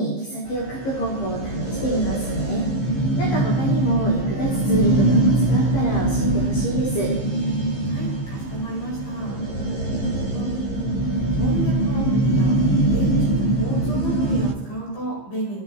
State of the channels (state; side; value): late; right; 15 ms